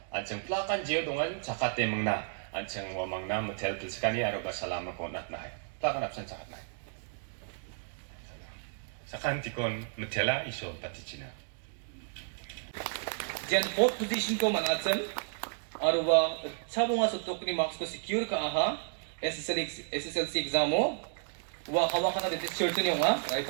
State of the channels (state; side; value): silent; left; digital silence